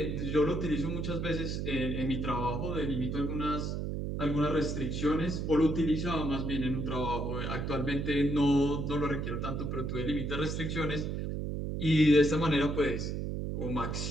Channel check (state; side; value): noise; right; hum, 2 dB below the sound